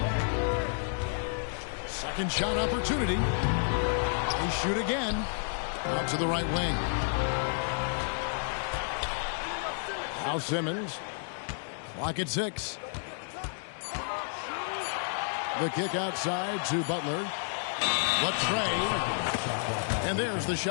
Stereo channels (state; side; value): silent; right; digital silence